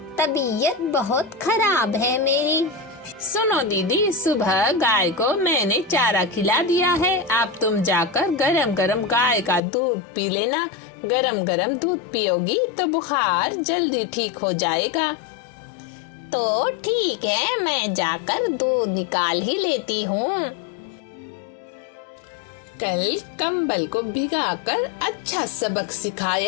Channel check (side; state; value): right; drops out; at 9.6 s